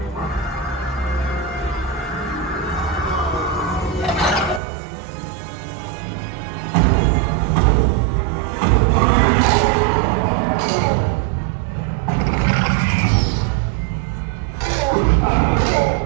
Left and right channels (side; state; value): left; drops out; at 4.6 s